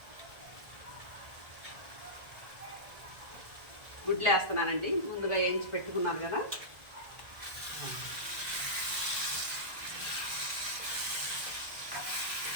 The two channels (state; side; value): late; left; 1.4 ms